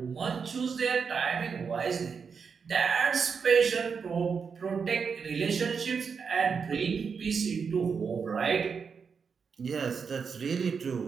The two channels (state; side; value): quieter; left; 5.9 dB